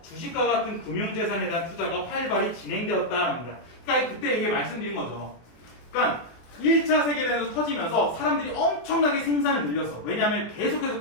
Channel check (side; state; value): right; late; 23 ms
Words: 주식과 같은 금융재산에 대한 투자가 활발히 진행되었다는 겁니다. 그러니까 그때 이게 말씀드린 거죠. 그러니까 1차 세계대전이 터지면서 사람들이 엄청나게 생산을 늘렸어. 왜냐하면